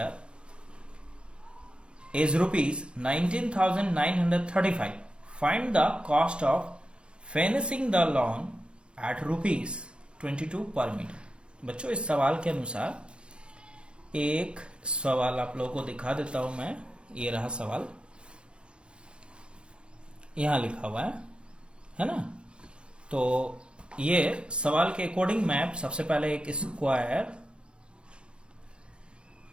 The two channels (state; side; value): late; left; 0.055 ms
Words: is ₹19,935. Find the cost of finishing the lawn at ₹22 per meter. बच्चों इस सवाल के अनुसार एक सवाल आप लोगों को दिखा देता हूं मैं। ये रहा सवाल, यहां लिखा हुआ है ना। तो ये सवाल के अकॉर्डिंग मैं सबसे पहले एक स्क्वायर